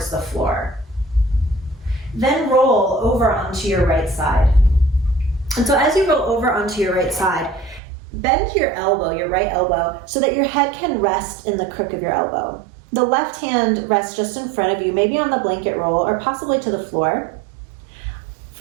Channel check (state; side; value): drops out; left; at 7.8 s